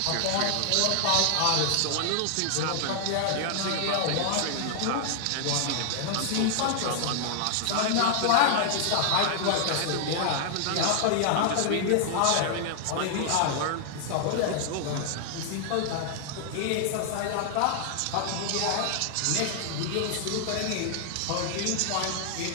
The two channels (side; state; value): both; different; correlation 0.00